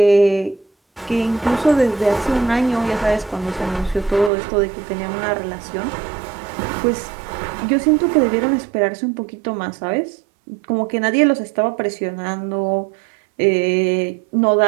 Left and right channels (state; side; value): drops out; left; at 4.3 s